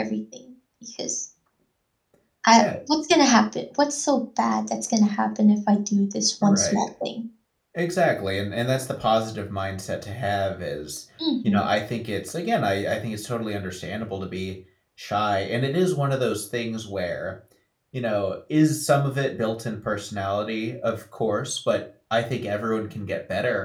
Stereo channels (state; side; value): identical; both; correlation 1.00